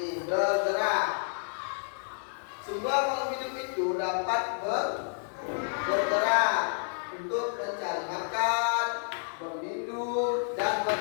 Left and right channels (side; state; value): right; silent; digital silence